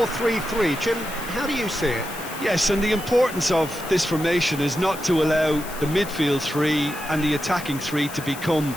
Jim, how do you see it? Yes, and the importance of this formation is not to allow the midfield three and the attacking three to become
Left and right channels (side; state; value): left; noise; hiss, 13 dB below the sound